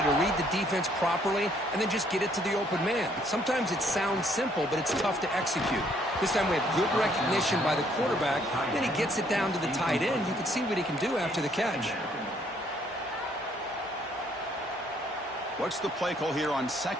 to read the defense properly and then just get it to the open man. Sometimes it sounds simple, but it's tough to execute. This time we have good recognition by the quarterback. Then he gets it down to the tight end. You can see what he can do after the catch. What's the play call here on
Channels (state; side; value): normal; both; correlation 0.66